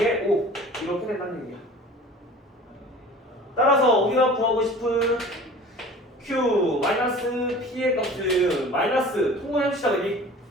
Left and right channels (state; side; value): normal; both; correlation 0.43